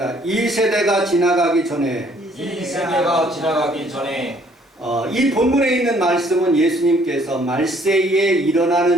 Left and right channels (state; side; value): normal; both; correlation 0.62